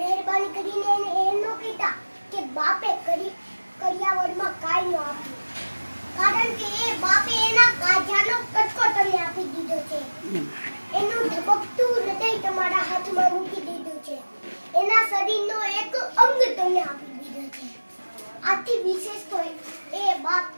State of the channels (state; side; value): inverted; both; correlation -1.00